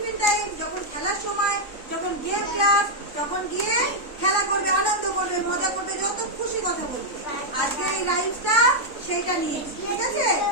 Time, যখন খেলার সময়, যখন গেম ক্লাস, তখন গিয়ে খেলা করবে, আনন্দ করবে, মজা করবে, যত খুশি কথা বলবে। আজকে এই রাইমসটা সেইটা নিয়ে, ঠিক আছে?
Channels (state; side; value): late; right; 3.6 ms